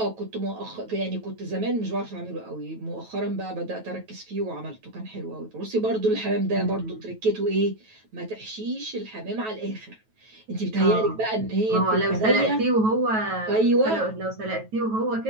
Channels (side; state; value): left; late; 9.2 ms